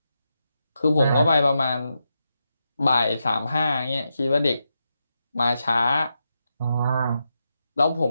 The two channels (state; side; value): inverted; both; correlation -0.86